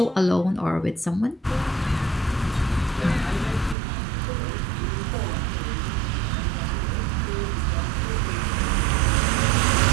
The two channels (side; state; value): left; drops out; at 3.8 s